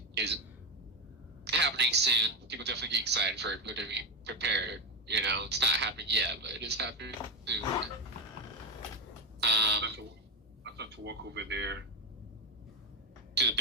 is happening soon. People definitely get excited for it. People to be prepared. You know, it's not happening yet, but it is happening soon. I thought to walk over there. To the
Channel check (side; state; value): both; normal; correlation 0.12